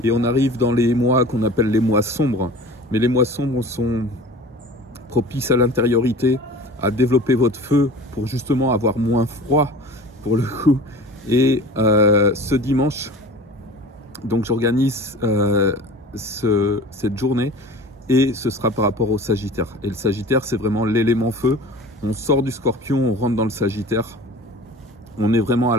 Et on arrive dans les mois qu'on appelle les mois sombres. Mais les mois sombres sont propices à l'intériorité, à développer votre feu pour justement avoir moins froid pour le coup. Et ce dimanche, donc j'organise cette journée et ce sera par rapport au Sagittaire. Et le Sagittaire, c'est vraiment l'élément feu. On sort du Scorpion, on rentre dans le Sagittaire. On est vraiment à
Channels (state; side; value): normal; both; correlation 0.40